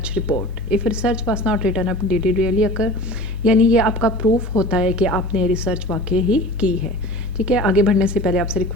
report. If research was not written up, did it really occur? यानी ये आपका प्रूफ होता है कि आपने रिसर्च वाकई ही की है। ठीक है, आगे बढ़ने से पहले आपसे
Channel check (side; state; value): both; normal; correlation 0.38